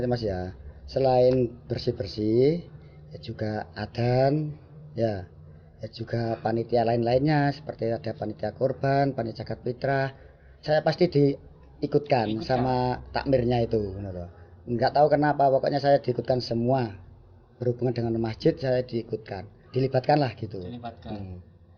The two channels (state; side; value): identical; both; correlation 1.00